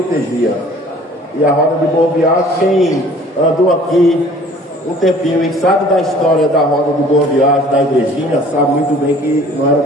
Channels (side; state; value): both; normal; correlation 0.51